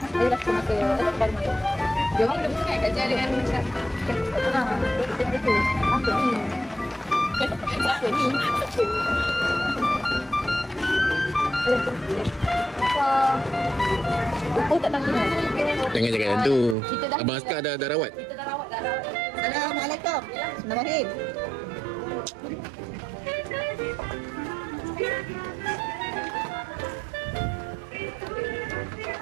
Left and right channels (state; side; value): drops out; left; at 16.8 s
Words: Dia dah kena ke baru main. Dia orang dah bukan kat jalan dengan macam itu. Apa ni? Apa ni? Oh, tak tahu. Jangan cakap yang tu. Abang Askar dah rawat. Kita dah rawat. Assalamualaikum. Bismillahirrahmanirrahim.